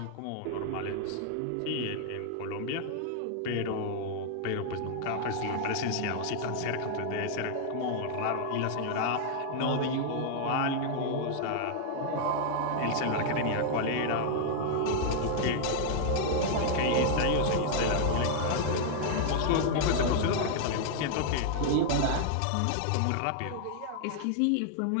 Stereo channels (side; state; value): both; different; correlation -0.01